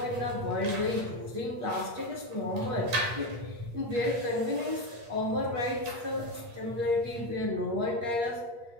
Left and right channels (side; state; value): left; late; 8.5 ms